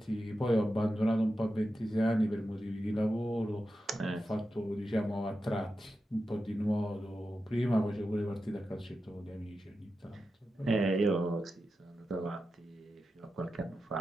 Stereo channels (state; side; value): normal; both; correlation 0.90